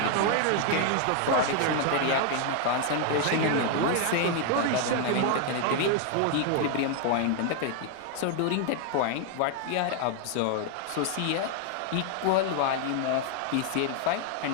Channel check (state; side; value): different; both; correlation 0.00